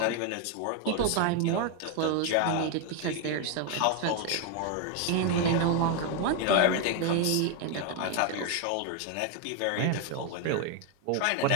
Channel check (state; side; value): different; both; correlation 0.01